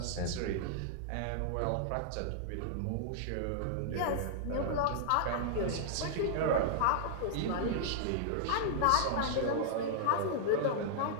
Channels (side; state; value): both; different; correlation -0.01